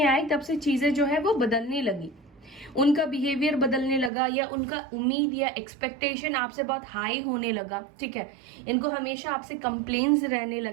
आए तब से चीजें जो है वो बदलने लगी, उनका बिहेवियर बदलने लगा, या उनका उम्मीद या एक्सपेक्टेशन आपसे बहुत हाई होने लगा, ठीक है। इनको हमेशा आपसे कंप्लेन्स रहने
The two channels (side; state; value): left; drops out; at 4.1 s